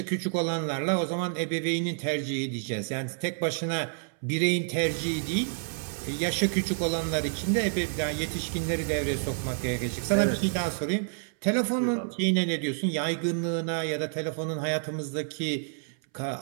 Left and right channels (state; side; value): silent; left; 59 dB below the other